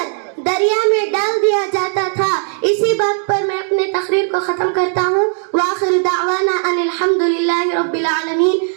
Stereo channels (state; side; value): silent; left; digital silence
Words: دریا میں ڈال دیا جاتا تھا. اسی بات پر میں اپنے تقریر کو ختم کرتا ہوں. وآخر دعوانا ان الحمد للہ رب العالمین.